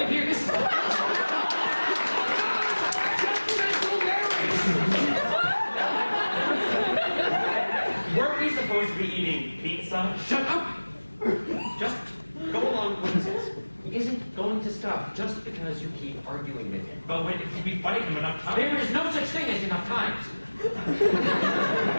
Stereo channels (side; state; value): both; inverted; correlation -1.00